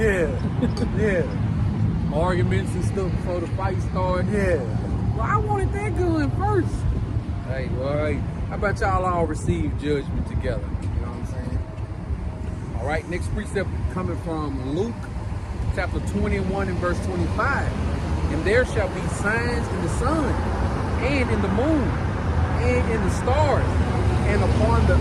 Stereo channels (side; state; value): both; identical; correlation 1.00